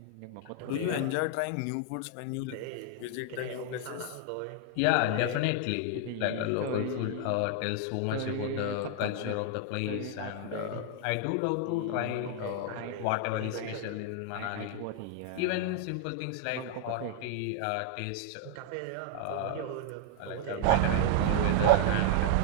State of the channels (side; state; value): both; different; correlation 0.00